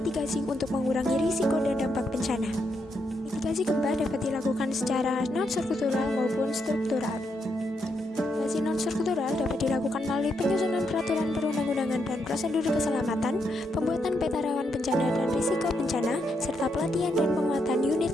untuk mengurangi risiko dan dampak bencana. Mitigasi gempa dapat dilakukan secara non-struktural maupun struktural. Mitigasi non-struktural dapat dilakukan melalui penyusunan peraturan perundang-undangan dan prosedur keselamatan, pembuatan peta rawan bencana dan risiko bencana, serta pelatihan dan penguatan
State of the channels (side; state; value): both; normal; correlation 0.80